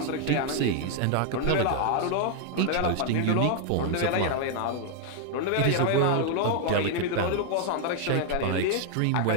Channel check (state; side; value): different; both; correlation 0.00